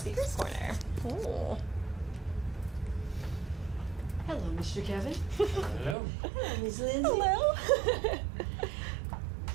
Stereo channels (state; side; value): drops out; left; at 6.0 s